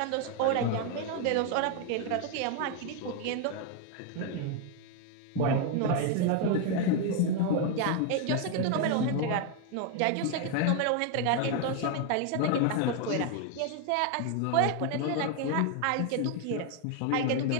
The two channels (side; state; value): both; different; correlation 0.01